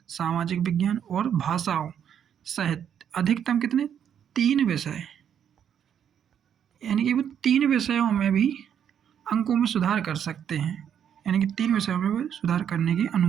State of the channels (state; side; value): quieter; left; 8.8 dB